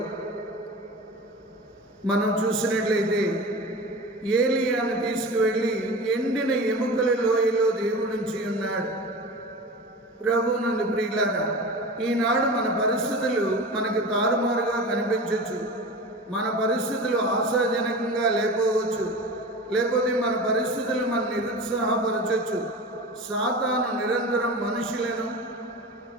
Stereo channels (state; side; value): normal; both; correlation 0.33